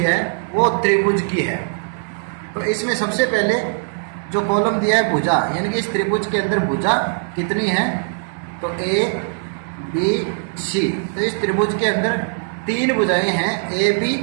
है वो त्रिभुज की है। तो इसमें सबसे पहले जो कॉलम दिया है भुजा, यानी कि इस त्रिभुज के अंदर भुजा कितनी है, तो ए बी सी। तो इस त्रिभुज के अंदर 3 भुजाएं हैं, ए बी,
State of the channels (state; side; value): silent; left; digital silence